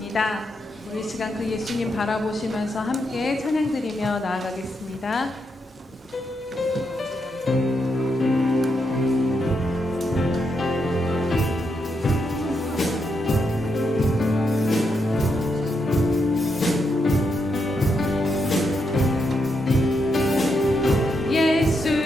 우리 시간 그 예수님 바라보시면서 함께 찬양 드리며 나아가겠습니다.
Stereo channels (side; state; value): both; normal; correlation 0.81